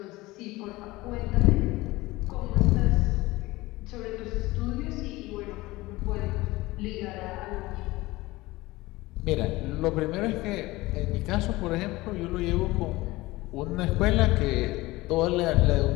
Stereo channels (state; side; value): quieter; right; 19.9 dB